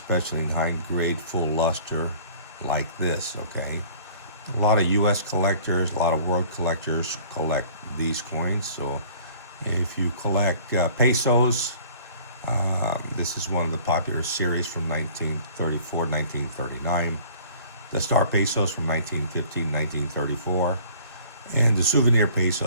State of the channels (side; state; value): both; inverted; correlation -0.51